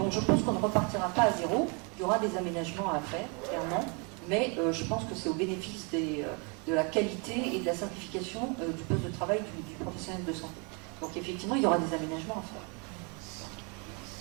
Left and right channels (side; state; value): left; quieter; 33.9 dB